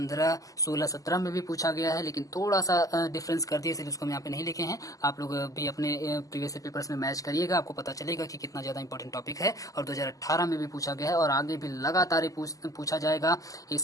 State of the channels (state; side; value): late; right; 0.17 ms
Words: 16, 17 में भी पूछा गया है, लेकिन थोड़ा सा डिफरेंस कर दिया, इसलिए उसको हम यहाँ पे नहीं लिखे हैं। आप लोग भी अपने प्रीवियस पेपर्स में मैच करिएगा, आपको पता चलेगा कि कितना ज्यादा इंपॉर्टेंट टॉपिक है। और 2018 में भी पूछा गया है, और आगे भी लगातार पूछा जाएगा,